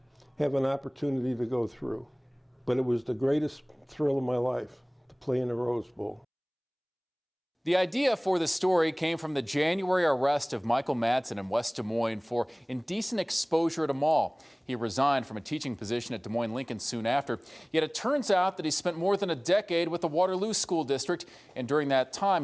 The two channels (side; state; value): both; identical; correlation 1.00